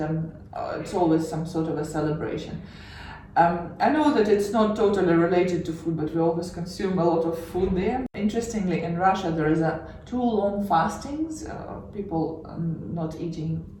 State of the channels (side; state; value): both; identical; correlation 1.00